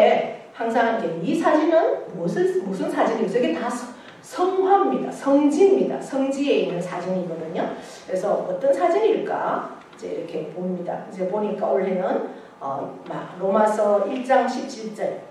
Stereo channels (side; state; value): both; identical; correlation 1.00